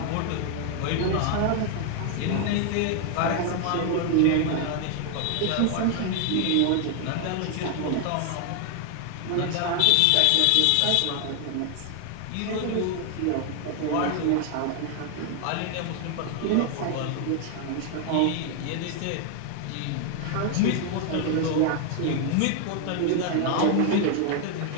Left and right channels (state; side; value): different; both; correlation 0.00